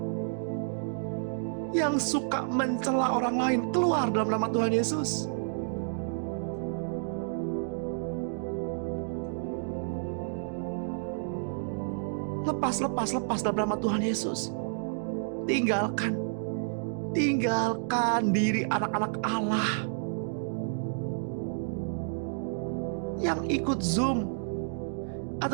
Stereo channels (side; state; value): left; silent; digital silence